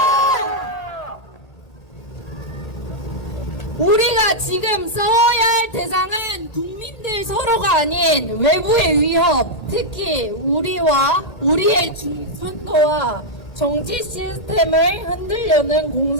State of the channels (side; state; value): right; late; 1.8 ms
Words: 우리가 지금 싸워야 할 대상은 국민들 서로가 아닌 외부의 위협, 특히 우리와 우리의 중선도와 정치 시스템을 흔들려는